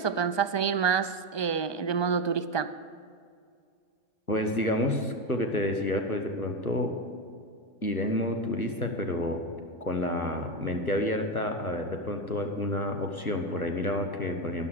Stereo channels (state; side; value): late; right; 1.2 ms